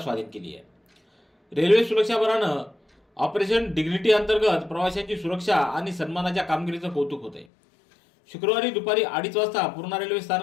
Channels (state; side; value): drops out; right; at 7.5 s